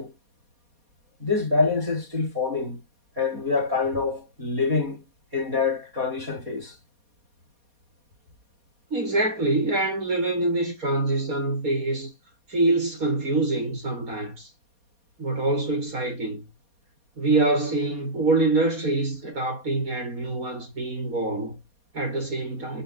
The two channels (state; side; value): late; left; 4.2 ms